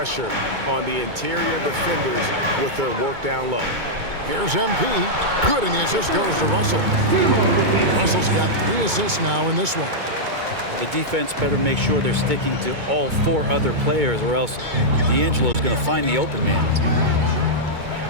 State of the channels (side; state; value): left; late; 2.2 ms